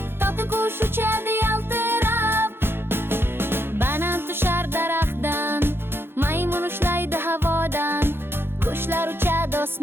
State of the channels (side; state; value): left; late; 0.11 ms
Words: toti qush uchadi yaltirab. Banan tushar daraxtdan, maymun ushlaydi havodan. Qushlar uchadi